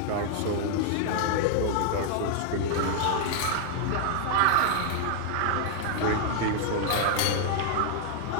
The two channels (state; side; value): different; both; correlation 0.00